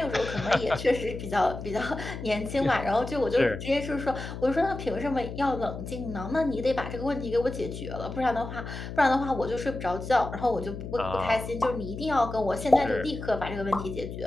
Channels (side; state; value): left; noise; hum, 8 dB below the sound